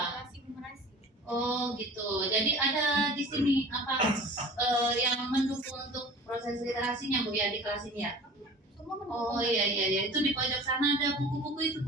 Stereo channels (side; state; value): both; normal; correlation 0.42